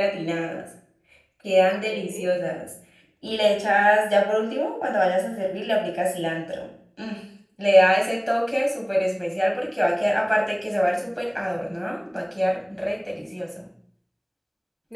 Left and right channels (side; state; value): both; identical; correlation 1.00